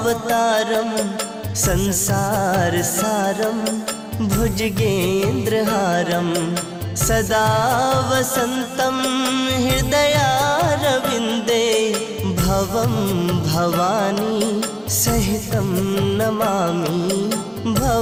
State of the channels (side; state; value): both; identical; correlation 1.00